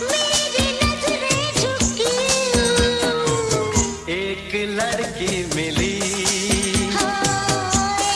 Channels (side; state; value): both; identical; correlation 1.00